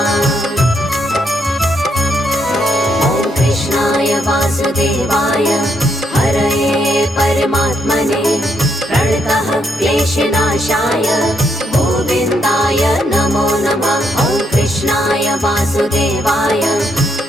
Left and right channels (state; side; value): normal; both; correlation 0.76